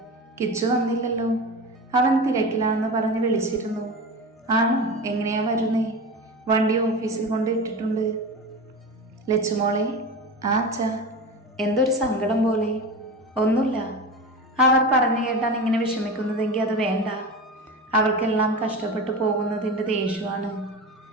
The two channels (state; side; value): normal; both; correlation 0.28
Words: കിച്ചു വന്നില്ലല്ലോ. അവൻ തിരക്കിലാണെന്ന് പറഞ്ഞ് വിളിച്ചിരുന്നു. ആണോ? എങ്ങനെയാ വരുന്നേ? വണ്ടി ഓഫീസിൽ കൊണ്ട് ഇട്ടിട്ടുണ്ട്. ലച്ചുമോളെ. അച്ഛാ, എന്തൊരു സങ്കടം പോലെ. ഒന്നുമില്ല. അവർ പറഞ്ഞു കേട്ടാൻ ഇങ്ങനെ വിഷമിക്കുന്നതെങ്കിൽ അത് വേണ്ട. അവർക്കെല്ലാം കഷ്ടപ്പെട്ടു പോകുന്നതിൻ്റെ ദേഷ്യമാണ്.